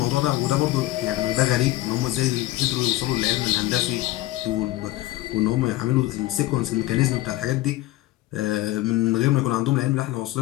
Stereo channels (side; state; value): right; quieter; 16.9 dB